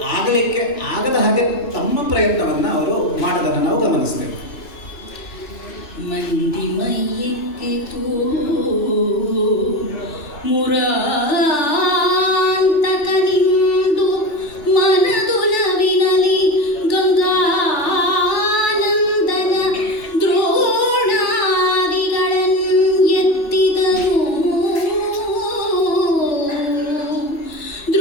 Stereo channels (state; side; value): late; right; 3.4 ms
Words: ಆಗಲಿಕ್ಕೆ ಆಗದ ಹಾಗೆ ತಮ್ಮ ಪ್ರಯತ್ನವನ್ನು ಅವರು ಮಾಡೋದನ್ನು ನಾವು ಗಮನಿಸ್ತೇವೆ. ಮಂದಿ ಮೈಯಿಕ್ಕಿತು ಮುರಾಂತಕನಿಂದು ಮನದುಲವಿನಲಿ ಗಂಗಾನಂದನ ದ್ರೋಣಾದಿಗಳನ್ನೆತ್ತಿದರು